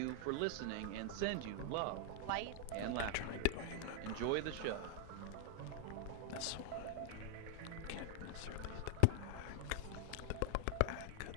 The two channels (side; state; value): both; different; correlation 0.00